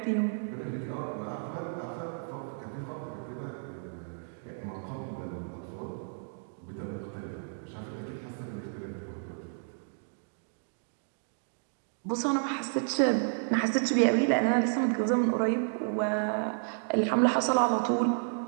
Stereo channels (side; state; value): left; silent; digital silence